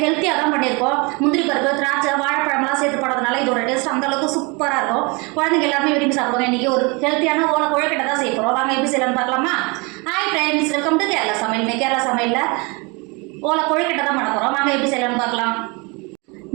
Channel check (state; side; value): quieter; left; 28.9 dB